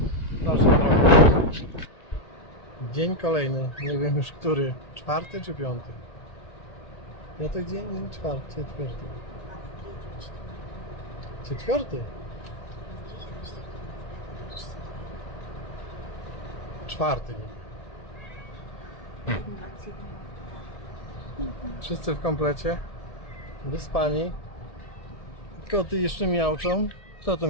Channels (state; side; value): late; right; 1.9 ms